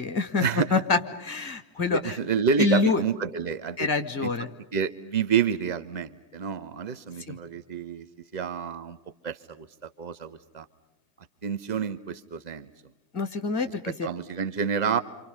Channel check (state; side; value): late; right; 1.9 ms